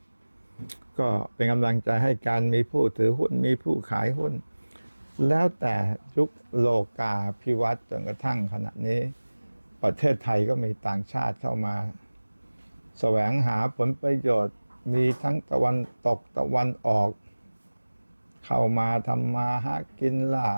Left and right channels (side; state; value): both; inverted; correlation -1.00